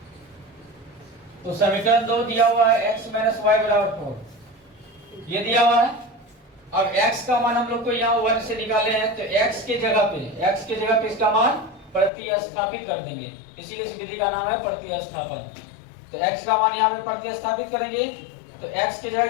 तो समीकरण 2 दिया हुआ है x माइनस वाई बराबर 4, ये दिया हुआ है। अब x का मान हम लोग को यहाँ 1 से निकाले हैं, तो x के जगह पे इसका मान प्रतिस्थापित कर देंगे, इसीलिए इस विधि का नाम है प्रतिस्थापन। तो x का मान यहाँ पे प्रतिस्थापित करेंगे, तो x की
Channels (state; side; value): drops out; right; at 12.1 s